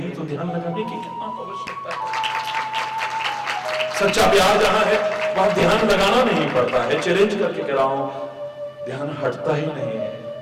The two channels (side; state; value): both; identical; correlation 1.00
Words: तो ध्यान लगाने की कितना आवश्यकता है। सच्चा प्यार जहां है वहां ध्यान लगाना नहीं पड़ता है। चैलेंज करके कह रहा हूं, ध्यान हटता ही नहीं है।